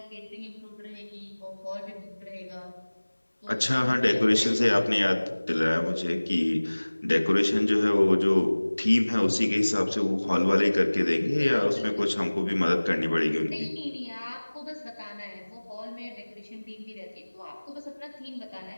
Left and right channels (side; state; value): both; inverted; correlation -1.00